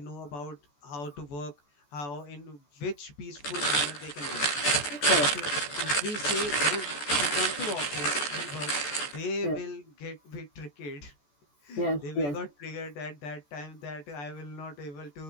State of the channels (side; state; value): right; late; 14 ms